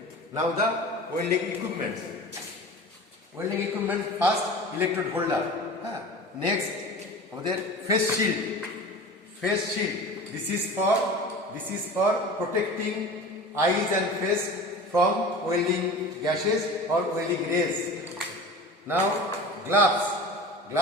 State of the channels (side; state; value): both; normal; correlation 0.36